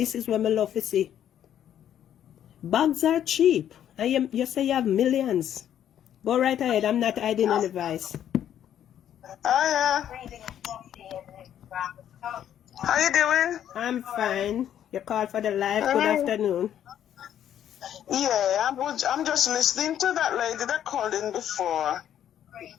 is what I love to see. Bags are cheap. You say you have millions. Go right ahead. I'm not hiding any vice. Yeah. How you doing? I'm fine. You called for the live. Good afternoon. Yeah, I'm just listening to that lady that called in before.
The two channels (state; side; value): quieter; right; 10.4 dB